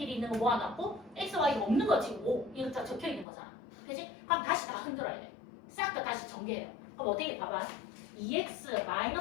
있는 거 모아놨고 x, y 없는 거 지금 5 이거 다 적혀 있는 거잖아. 그치? 그럼 다시 다 흔들어야 돼. 싹 다 다시 정리해요. 그럼 어떻게 봐봐. 2x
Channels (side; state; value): right; drops out; at 3.2 s